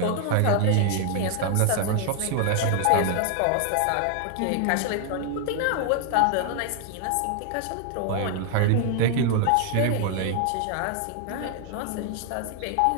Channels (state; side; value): different; both; correlation 0.00